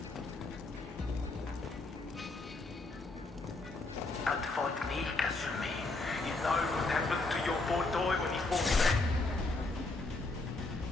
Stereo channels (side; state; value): right; quieter; 3.3 dB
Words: Don't fight me, Kasumi. You know what happened to your boy Doi when he fought back.